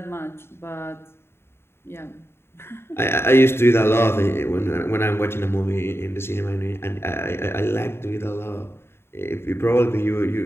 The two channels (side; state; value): right; late; 0.12 ms